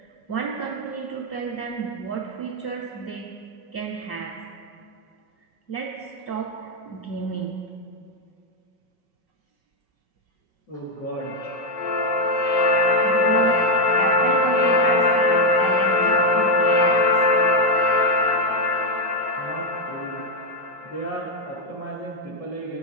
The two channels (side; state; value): right; late; 5.4 ms